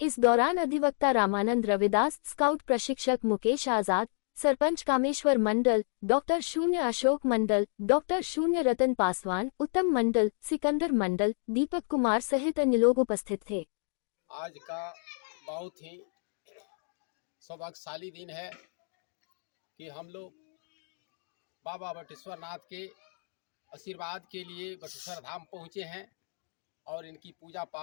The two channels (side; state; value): right; silent; 57 dB below the other